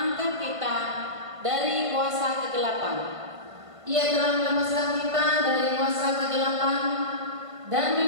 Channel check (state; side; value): late; left; 1.5 ms